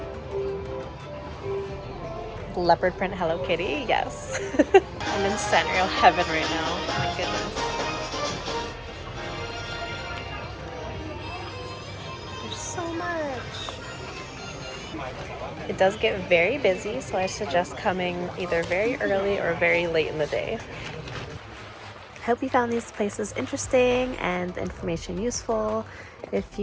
Leopard print Hello Kitty, yes. I'm in Sanrio heaven right now. Oh my goodness. There's so much. It does get very busy, so I suggest coming either very early or very late in the day. I hope you found these places interesting and the information useful. If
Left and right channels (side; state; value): both; identical; correlation 1.00